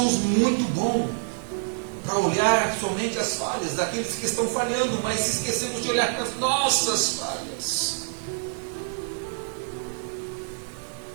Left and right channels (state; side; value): silent; left; digital silence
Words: muito bons para olhar somente as falhas daqueles que estão falhando, mas se esquecemos de olhar para as nossas falhas.